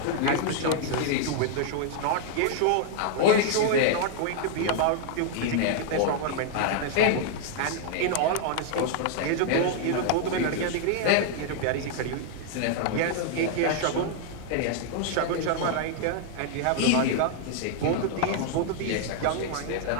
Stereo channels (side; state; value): both; different; correlation 0.00